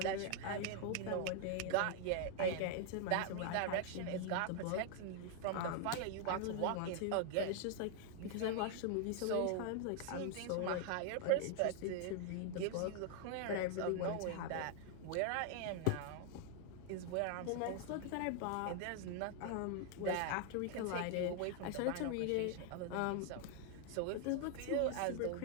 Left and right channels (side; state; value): both; different; correlation 0.00